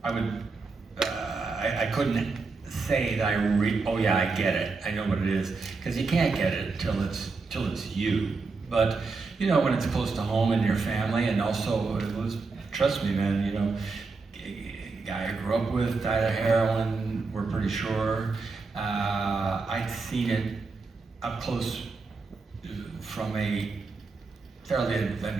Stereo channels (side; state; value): left; quieter; 4.2 dB